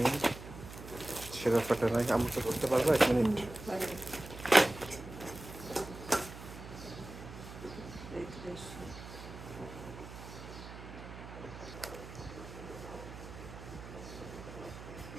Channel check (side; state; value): right; noise; hum, 13 dB below the sound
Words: ছেঁড়া ফাটা নাই। আমাকে ধরতে পারবো 1 মিনিট?